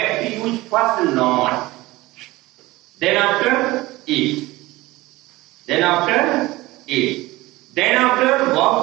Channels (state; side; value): quieter; left; 19.4 dB